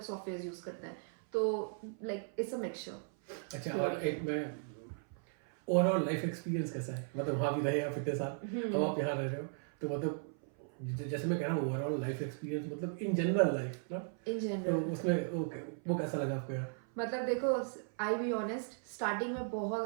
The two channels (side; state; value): left; silent; 53 dB below the other